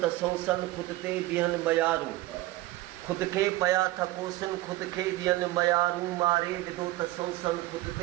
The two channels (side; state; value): left; quieter; 17.4 dB